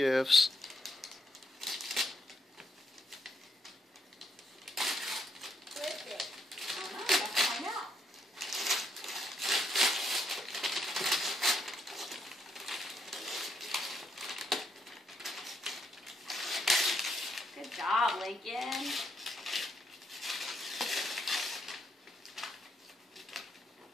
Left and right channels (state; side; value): normal; both; correlation 0.76